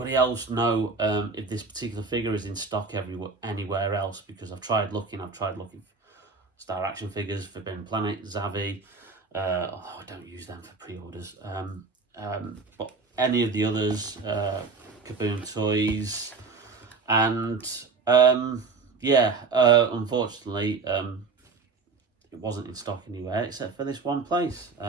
else know if this particular figure is in stock anywhere else? Because I've tried looking Star Action Figures, Forbidden Planet, Zavi, although I don't use them for pre-orders, but any of the others, Kaboom Toys, and yeah, unfortunately, it wasn't in stock anywhere except for this one place,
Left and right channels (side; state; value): left; quieter; 4.5 dB